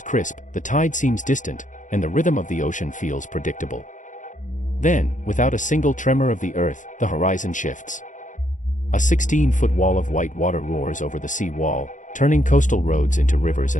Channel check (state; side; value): late; right; 0.37 ms